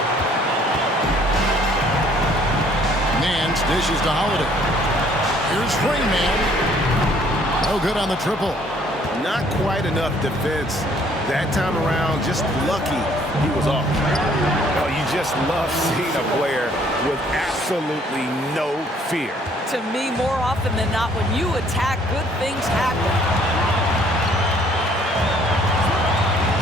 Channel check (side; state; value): both; normal; correlation 0.61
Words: Nance dishes to Holiday. Here's Rainman. No good on the triple. Not quite enough defense that time around. Just lucky he was off. Oh, you just love seeing a player with absolutely no fear. To me, more often than not, when you attack, good things happen.